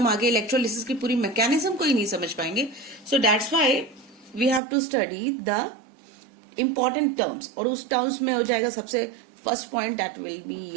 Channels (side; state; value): left; drops out; at 4.6 s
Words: आगे इलेक्ट्रोलिसिस की पूरी मैकेनिज्म को ही नहीं समझ पाएंगे. So that's why we have to study the important terms. और उस टर्म्स में हो जाएगा सबसे first point, that will be